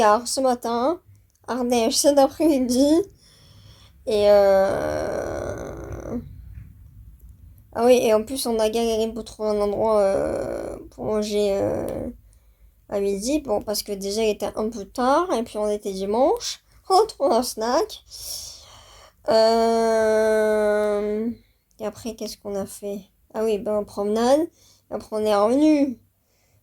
ce matin. Ardèche cet après-midi. Et ah oui, et en plus, on a galéré pour trouver un endroit pour manger à midi. Bon, parce que déjà, il était un peu tard. Et puis, on était dimanche. On trouve un snack. Et après, qu'est-ce qu'on a fait? Ah oui, ben, promenade. Après, on est revenu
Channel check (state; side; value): identical; both; correlation 1.00